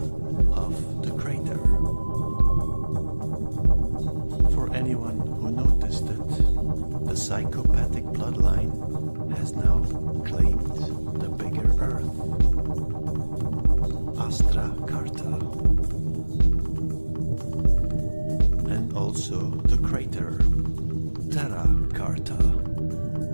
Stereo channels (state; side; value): inverted; both; correlation -1.00